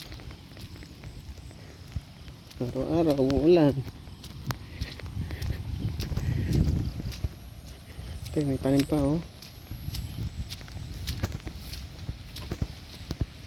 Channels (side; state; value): both; identical; correlation 1.00